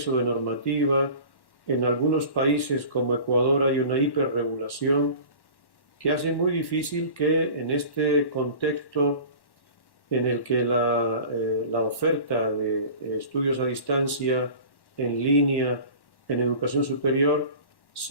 de normativa, en algunos países como Ecuador hay una hiperregulación que hace muy difícil que en este contexto en el que la oferta de estudios a distancia, en línea, en educación superior,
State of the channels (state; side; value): late; right; 1.1 ms